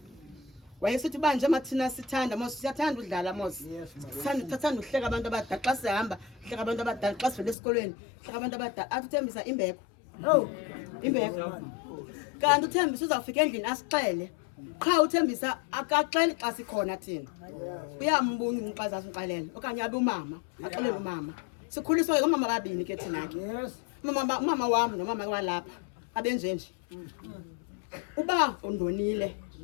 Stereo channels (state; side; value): drops out; right; at 7.6 s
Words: Wayesithi banje mathina sithanda mos siyathanda udlala mos. Sithanda uhleka abantu abadala xa sihamba, hleka abantu abadala xa sivele esikolweni, hleka abantu abadala. Athi uThembisa imbeko. Oh. Imbeko. Kanti uThembisa uzawufika endlini asixele. Qha uThembisa akaxeli xa sikhona thina. Uyambunga umxazazi uxelela okanye abe umama, axelele umama. Sikhuliswa ke umama babini ke thina ke. Yes. Umama wami nomama walapha abenjenje. Uba undonile